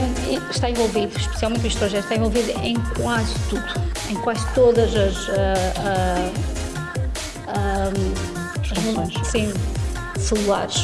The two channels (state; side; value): identical; both; correlation 1.00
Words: envolvido, especialmente o estrogênio, está envolvido em quase tudo, em quase todas as sim,